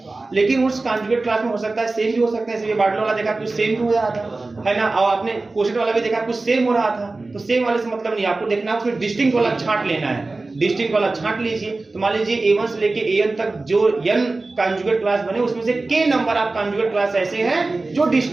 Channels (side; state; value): left; quieter; 3.4 dB